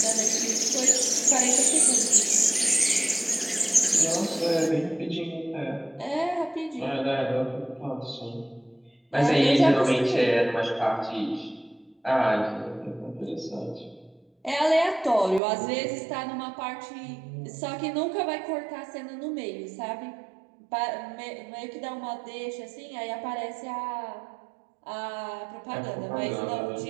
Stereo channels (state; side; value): drops out; left; at 15.4 s